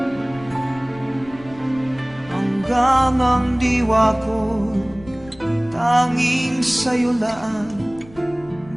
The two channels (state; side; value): noise; left; rumble, 21 dB below the sound